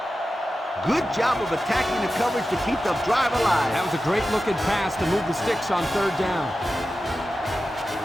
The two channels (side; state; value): both; normal; correlation 0.93